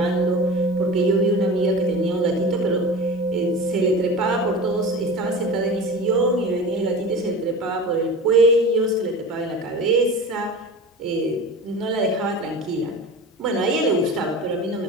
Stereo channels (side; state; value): both; normal; correlation 0.33